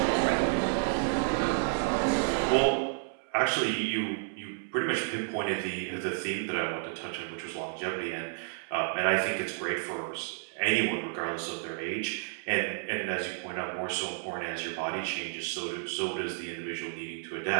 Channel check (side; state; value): left; silent; 57 dB below the other